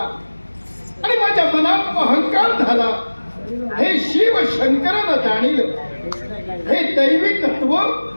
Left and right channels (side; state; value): both; inverted; correlation -1.00